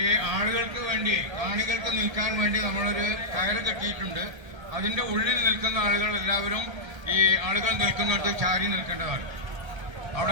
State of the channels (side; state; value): left; late; 1.3 ms